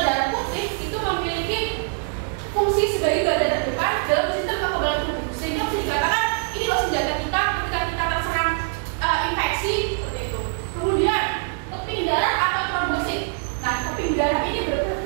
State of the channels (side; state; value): left; silent; 61 dB below the other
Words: darah putih itu memiliki fungsi sebagai garda terdepan dalam sistem kekebalan tubuh, sehingga bisa dikatakan ini loh senjata kita ketika kita terserang infeksi seperti itu. Kemudian keping darah atau trombosit. Nah, keping darah ini